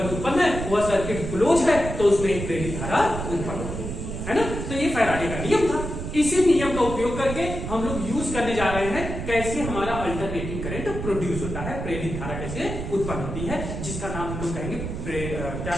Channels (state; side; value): noise; right; rumble, 6 dB below the sound